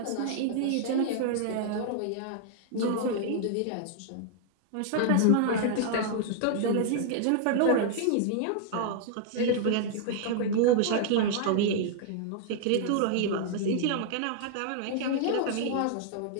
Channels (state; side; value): different; both; correlation -0.01